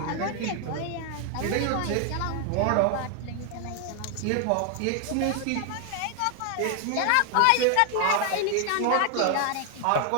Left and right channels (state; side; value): different; both; correlation 0.00